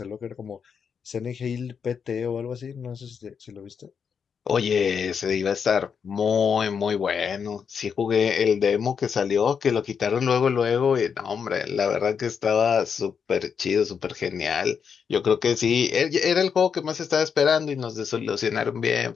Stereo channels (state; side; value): quieter; right; 6.7 dB